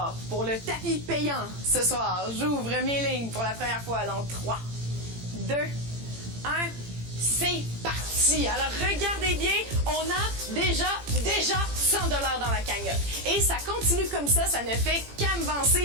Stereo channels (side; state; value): left; late; 18 ms